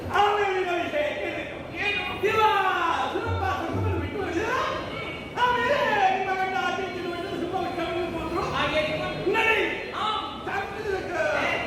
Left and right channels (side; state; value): both; identical; correlation 1.00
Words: ಆಮೇಲಿನ ವಿಷಯ ಏನು ದಿವ ಸುಲಭ ಸುಮ್ಮನೆ ಬಿಟ್ಟು ಆಮೇಲೆ ನಿಮ್ಮ ಗಂಡ ಆಚೆ ಸುಮ್ಮ ಹೋದ್ರು. ಹಾಗೆ ನಡಿ